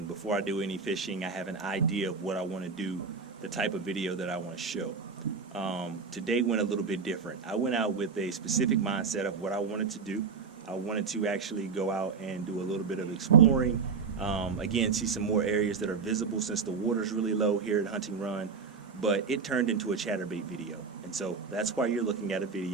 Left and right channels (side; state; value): left; quieter; 5.3 dB